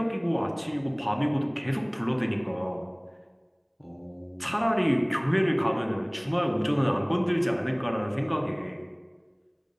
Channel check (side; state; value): both; identical; correlation 1.00